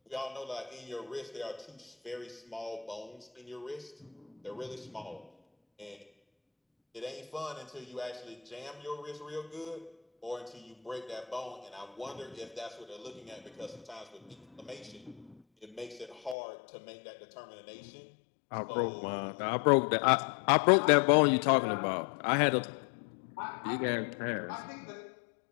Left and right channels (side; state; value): right; drops out; at 16.4 s